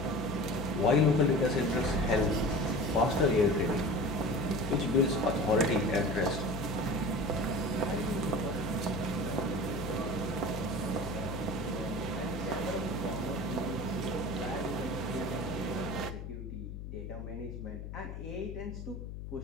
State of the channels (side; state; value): left; noise; hum, 8 dB below the sound